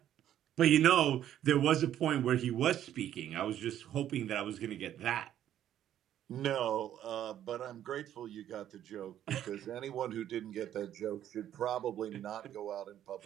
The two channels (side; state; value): left; quieter; 11.2 dB